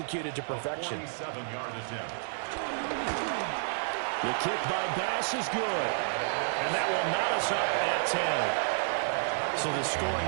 to perfection. The kick by Bass is good. And that will knot us up at 10. So the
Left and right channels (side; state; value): left; silent; digital silence